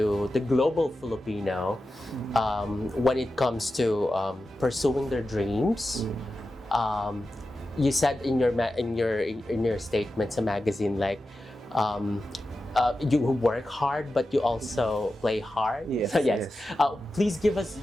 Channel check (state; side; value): normal; both; correlation 0.92